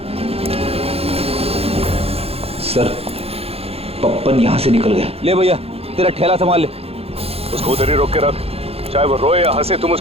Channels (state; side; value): late; left; 0.29 ms